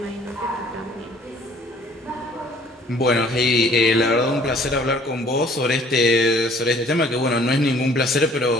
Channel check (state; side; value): normal; both; correlation 0.56